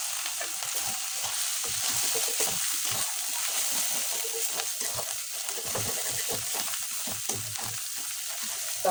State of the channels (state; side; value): identical; both; correlation 1.00